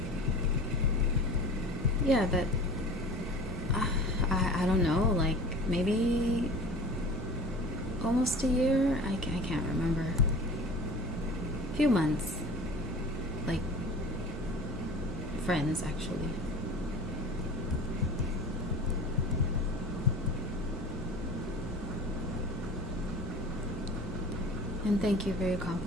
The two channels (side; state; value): both; normal; correlation 0.39